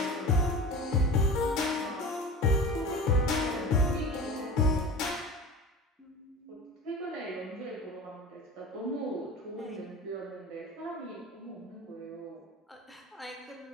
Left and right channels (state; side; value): normal; both; correlation 0.35